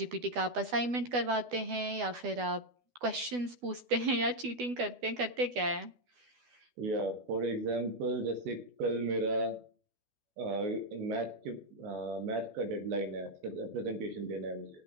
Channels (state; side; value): late; left; 12 ms